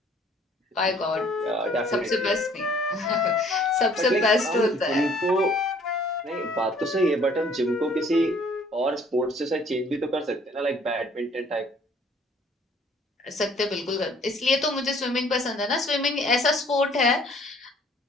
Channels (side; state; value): both; normal; correlation 0.58